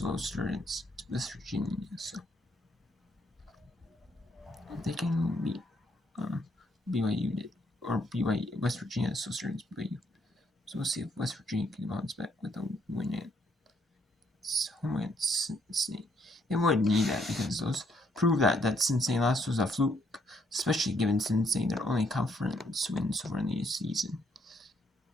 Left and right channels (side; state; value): both; normal; correlation 0.71